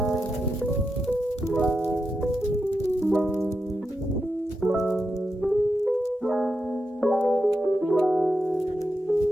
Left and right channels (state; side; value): normal; both; correlation 0.87